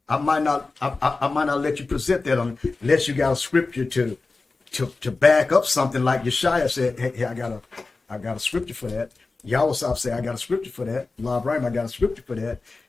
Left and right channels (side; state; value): right; quieter; 3.7 dB